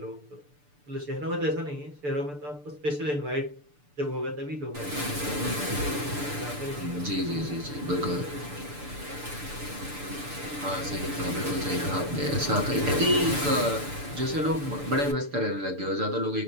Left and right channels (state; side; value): late; left; 6.8 ms